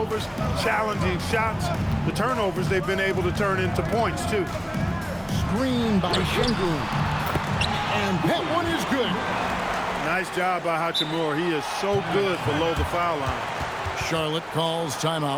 challenging shots. The turnovers they've been able to turn into points, too. Screen by Şengün. And that one is good. Nice job by Hachimura. He is so good below the foul line. Charlotte calls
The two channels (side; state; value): both; identical; correlation 1.00